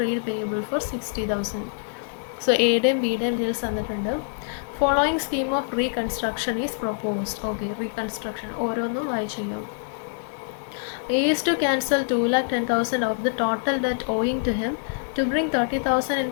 payable for 60,000. So A ടെയും B ടെയും deals തന്നിട്ടുണ്ട്. Following scheme of reconstruction is proposed. Okay, reconstruction ഓരോന്നും വായിച്ചു ചെയ്യാം. A is to cancel 2,10,000 of the total debt owing to him, to bring 30,000 in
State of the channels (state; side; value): silent; right; digital silence